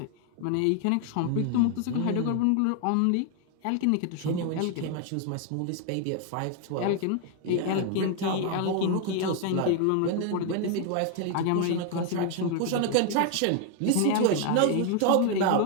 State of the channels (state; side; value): different; both; correlation 0.00